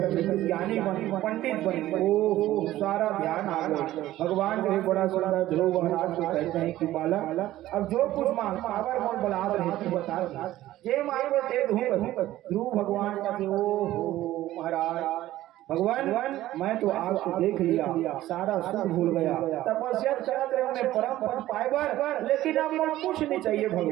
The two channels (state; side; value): quieter; left; 14.9 dB